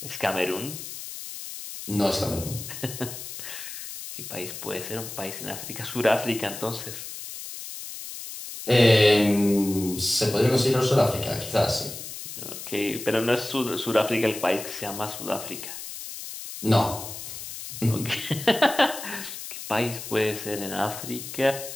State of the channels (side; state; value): left; noise; hiss, 10 dB below the sound